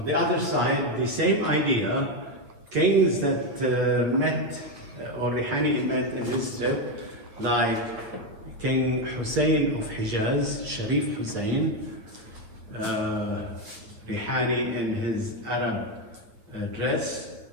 the same idea, kings that met, or Rihani met in his trip, like King Hussein of Hijaz, Sharif Hussein, Rihani in his Arab dress,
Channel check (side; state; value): left; late; 8.9 ms